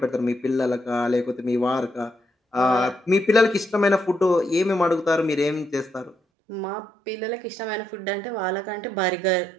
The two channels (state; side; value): drops out; left; at 6.2 s